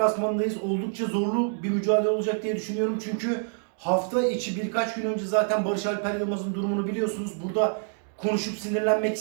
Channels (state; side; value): silent; left; digital silence